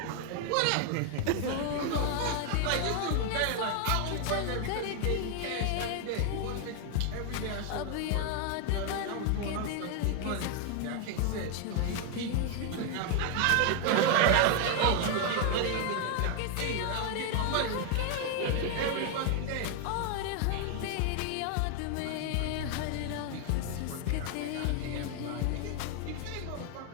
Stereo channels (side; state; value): both; different; correlation 0.00